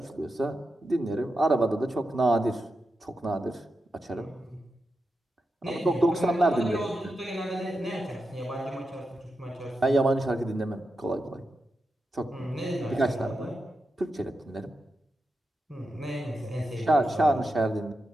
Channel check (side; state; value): both; normal; correlation 0.88